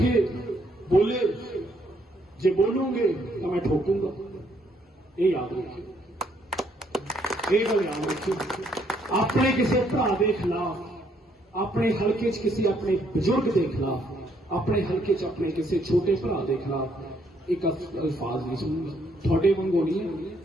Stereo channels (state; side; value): normal; both; correlation 0.70